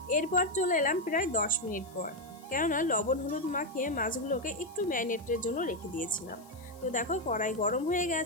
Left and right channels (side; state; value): left; noise; hiss, 25 dB below the sound